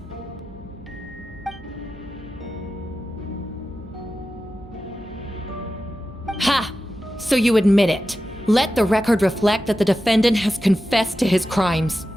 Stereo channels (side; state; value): both; normal; correlation 0.92